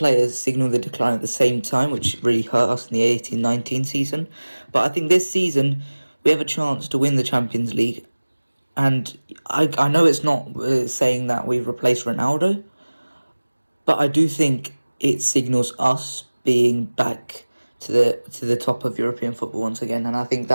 signalled the decline at the same time, which really hurt us in the 18-19 season. But I think this season we have a chance to win the Champions League, and I know it's not saying that we've replaced Ronaldo, but I do think it signals us being back to the top of European football once again, and I think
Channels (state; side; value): inverted; both; correlation -1.00